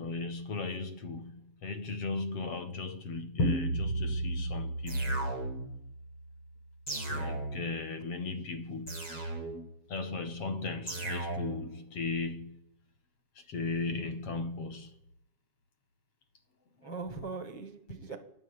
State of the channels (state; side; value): late; right; 7.4 ms